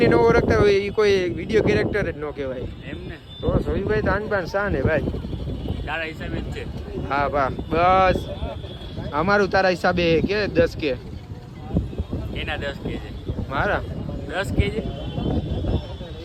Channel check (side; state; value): both; identical; correlation 1.00